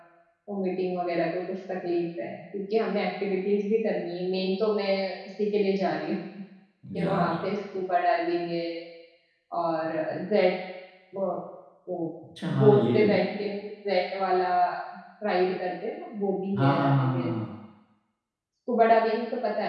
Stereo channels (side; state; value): both; identical; correlation 1.00